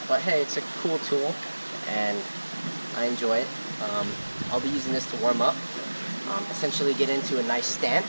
But hey, it's a cool tool, and I enjoy it. I'll be using this to warm up, essentially get into a nice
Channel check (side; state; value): both; inverted; correlation -1.00